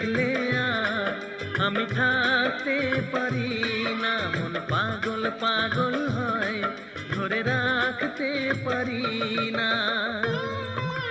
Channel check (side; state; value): both; identical; correlation 1.00